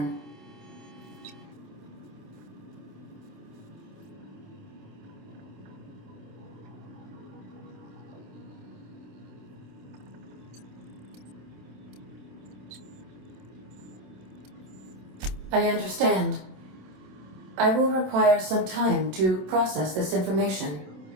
I understand. I will require some time to process this information.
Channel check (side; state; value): left; late; 27 ms